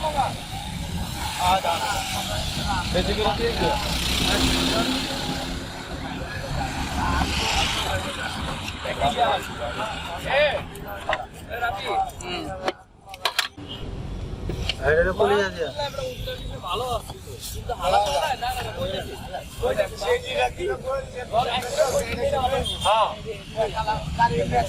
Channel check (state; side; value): identical; both; correlation 1.00